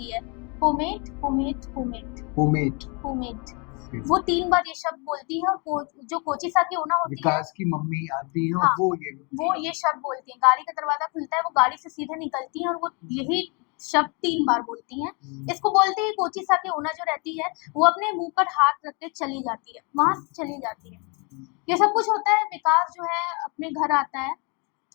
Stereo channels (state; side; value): quieter; right; 32.4 dB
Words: है, pomade pomade pomade pomade. Pomade. वो 3 बार ये शब्द बोलती है और जो कोचिसा की ओना होती है, विकास की मम्मी आती है और हाँ, वो ये शब्द बोलती हैं। गाड़ी का दरवाजा खुलता है, वो गाड़ी से सीधे निकलती हैं और वो यही शब्द 3 बार बोलती हैं। इसको बोलते हैं कोचिसा की ओना जो रहती है, वो अपने मुंह पर हाथ रख के चली जाती है, वहां से चली जाती है। ये सब कुछ होता है, विकास जो है अपने घर आता है